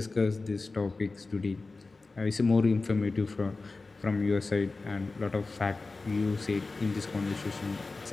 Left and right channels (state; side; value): quieter; right; 3.7 dB